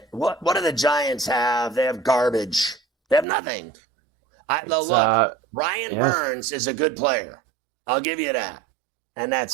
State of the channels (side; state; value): left; drops out; at 3.2 s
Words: What do the Giants have? They have garbage. They have nothing. Ryan Burns is a good player. I'll give you that. And